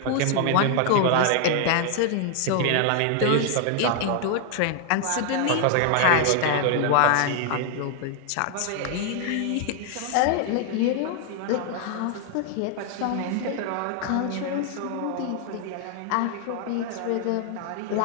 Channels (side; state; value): both; different; correlation 0.00